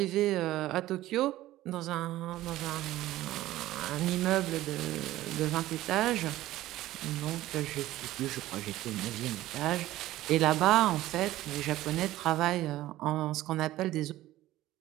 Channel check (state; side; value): quieter; left; 15.5 dB